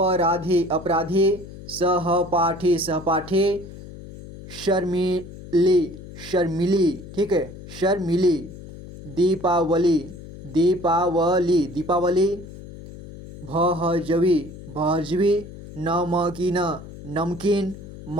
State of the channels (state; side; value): noise; left; hum, 15 dB below the sound